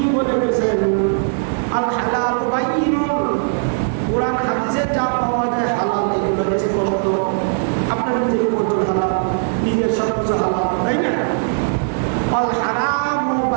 বলে গেছেন? আল হালাল বাইয়িন, কোরআন হাদিসে যা পাওয়া যায় হালাল এগুলো স্পষ্ট। আপনার নিজের পর্যন্ত হালাল, নিজের সবকিছু হালাল, তাই না? আল হারাম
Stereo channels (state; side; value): silent; left; digital silence